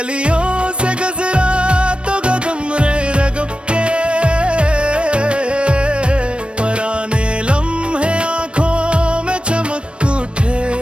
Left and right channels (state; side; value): late; left; 0.058 ms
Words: से गुजरा तो कदम रे रगब के, पराने लम्हे आंखों में चमक उठे।